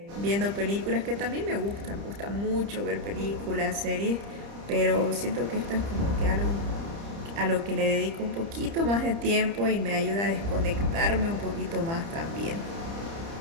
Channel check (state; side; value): late; left; 30 ms